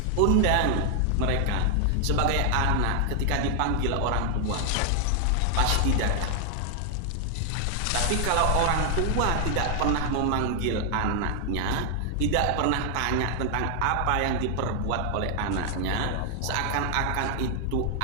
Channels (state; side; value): different; both; correlation 0.00